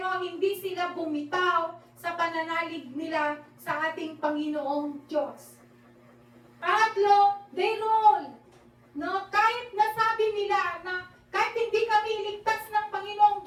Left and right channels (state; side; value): identical; both; correlation 1.00